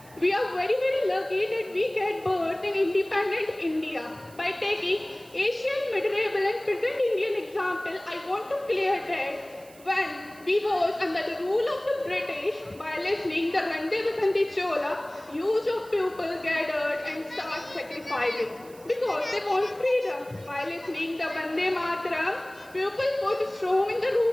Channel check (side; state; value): right; noise; hiss, 24 dB below the sound